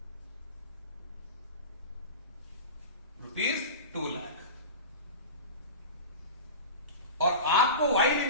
रुपीज 2 लाख, और आपको वाई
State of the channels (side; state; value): both; inverted; correlation -0.31